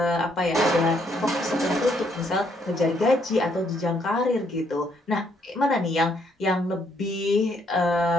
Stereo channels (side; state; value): both; normal; correlation 0.71